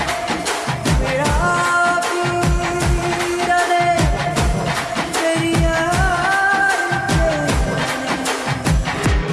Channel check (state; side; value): identical; both; correlation 1.00